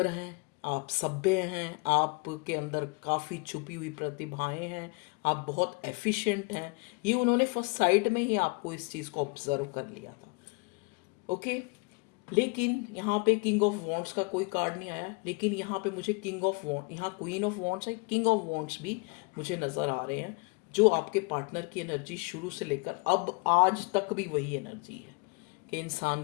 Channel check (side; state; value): right; quieter; 30.8 dB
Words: हैं, आप सभ्य हैं, आपके अंदर काफ़ी छुपी हुई प्रतिभाएं हैं, आप बहुत एफिशिएंट हैं। ये उन्होंने फर्स्ट साइट में ही आपको इस चीज़ को ऑब्जर्व कर लिया था। ओके, लेकिन यहाँ पे किंग ऑफ वॉन्ड्स का कोई कार्ड नहीं आया, लेकिन यहाँ पे मुझे किंग ऑफ वॉन्ड, यहाँ क्वीन ऑफ वॉन्ड्स है, किंग ऑफ वॉन्ड्स भी मुझे नज़र आ रहे हैं, जो आपके पार्टनर की एनर्जी शुरू से लेकर अब आज तक भी वही एनर्जी है कि